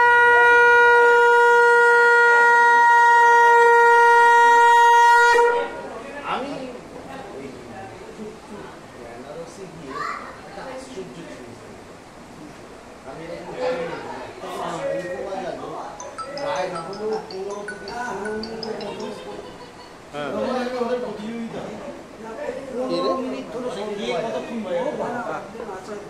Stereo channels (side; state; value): both; identical; correlation 1.00